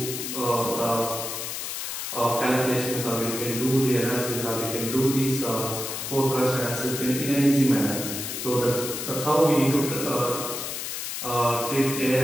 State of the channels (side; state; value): left; noise; hiss, 5 dB below the sound